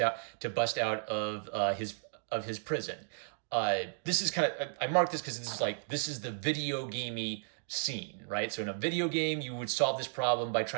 out of his prison. This is kind of, I marked this because this is the video gamey scene, right? So in a video game, you would solve this problem by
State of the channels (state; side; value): silent; left; digital silence